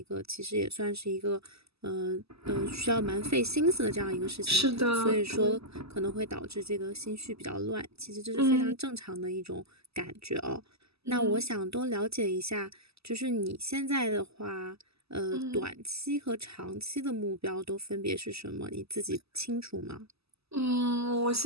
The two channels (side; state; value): left; late; 0.78 ms